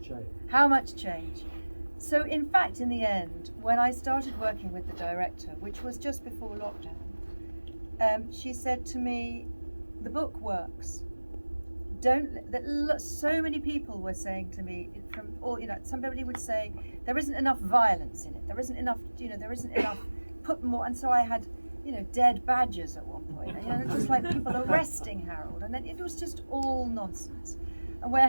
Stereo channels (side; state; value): both; inverted; correlation -1.00